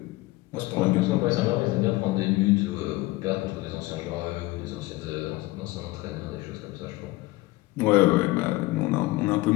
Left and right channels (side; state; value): right; quieter; 20.1 dB